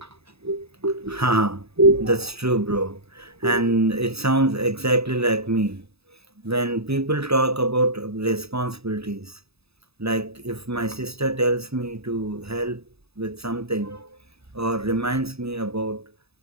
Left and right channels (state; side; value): late; left; 0.79 ms